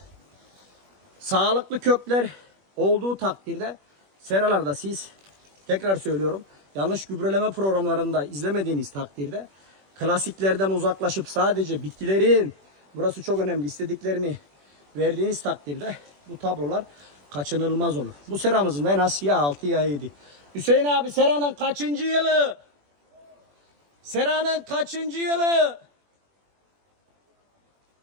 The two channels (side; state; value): left; late; 21 ms